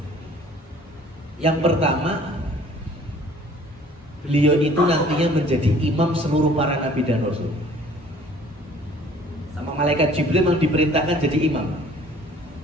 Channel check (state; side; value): normal; both; correlation 0.53